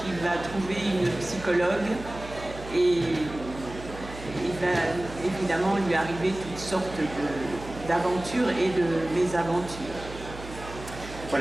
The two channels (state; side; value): noise; right; hum, 13 dB below the sound